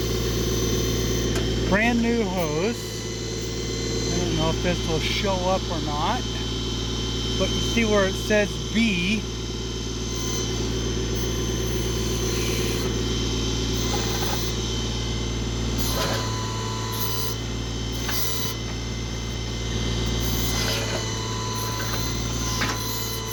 Brand new hose. I don't know if this will show up or not, but you see where it says B.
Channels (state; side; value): identical; both; correlation 1.00